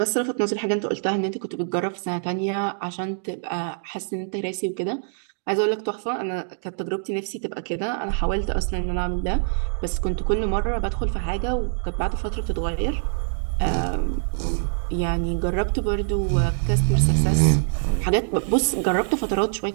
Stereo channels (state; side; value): silent; left; digital silence